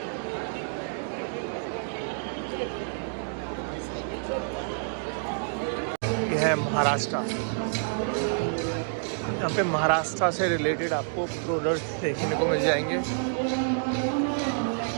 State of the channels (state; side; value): silent; left; digital silence